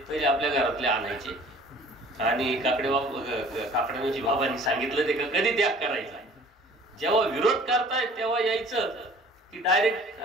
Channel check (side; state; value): both; normal; correlation 0.50